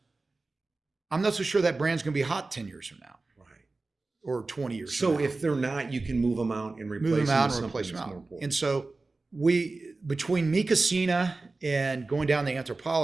I'm not so sure that brand's going to be hot 10 years from now. Or 20 years. So if they're not, you can move them out and replace them out. And so between Mi Casina and going down the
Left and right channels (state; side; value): quieter; left; 3.5 dB